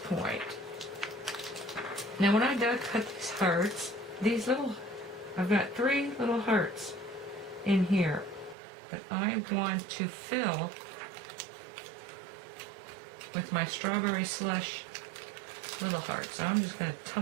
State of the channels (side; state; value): left; drops out; at 8.6 s